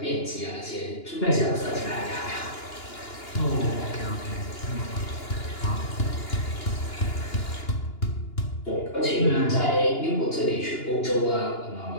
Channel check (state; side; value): late; right; 2.9 ms